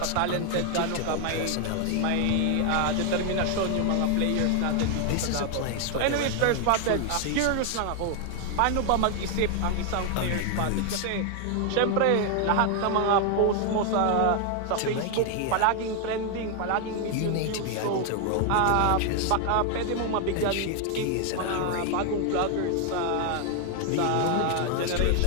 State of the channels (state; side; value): different; both; correlation 0.00